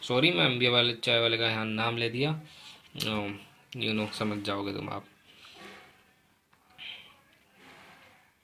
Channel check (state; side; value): identical; both; correlation 1.00